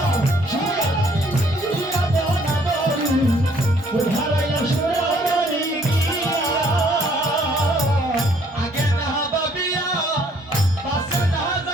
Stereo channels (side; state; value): both; normal; correlation 0.63